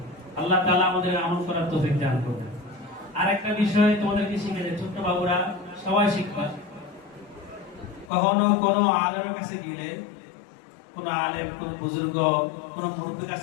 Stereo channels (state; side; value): drops out; right; at 8.1 s